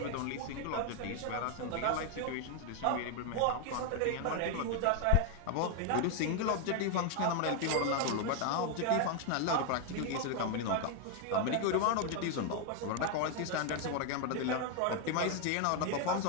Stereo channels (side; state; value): both; different; correlation 0.00